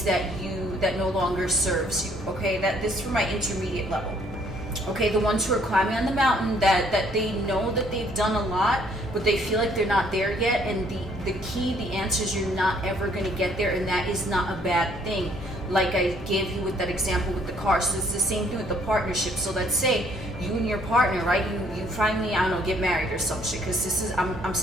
that no longer serves you. Okay, this is for my intermediate level. Okay, the ones who are climbing on the mountain that they know that they've done a lot, but they feel like they're not there yet. And the key, the answer is you're not ever going to get there, and that is not a bad thing. Like I gave you with that example with the car. So it's the same thing with the partnership. So let's say you and your partner, right? You finally, I don't know, get married or some shit. Because this is, I'm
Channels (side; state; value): both; normal; correlation 0.64